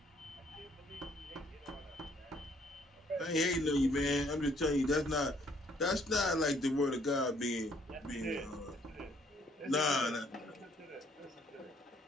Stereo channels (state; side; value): normal; both; correlation 0.65